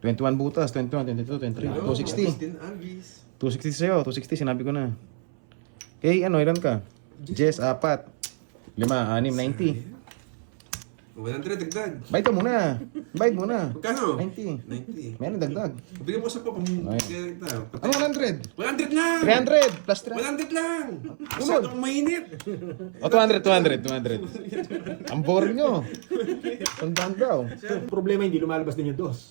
butas, 21, 22, 23, 260. Agustin Alvis. 260 sa'yo, 260 sinabi ko na. Okay, ano, ilan ka? Jess, 4. 5, 6, 90. 100 dagdag. Bayad ka muna. Bayad muna. Magkano? 90. 90. Meron dagdag. Bigyan mo sa pa Ayun. kita. Ano 100? 100 lang! 300 plus 300. 100 lang! Masyadong mainit. O, 200. Ang boring nyo. Tandaan daw. Problema hindi lumalabas din yung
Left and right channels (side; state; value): left; silent; 60 dB below the other